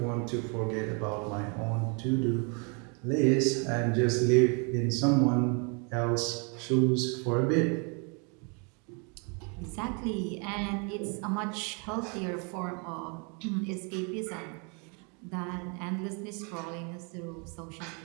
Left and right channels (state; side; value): quieter; left; 35.0 dB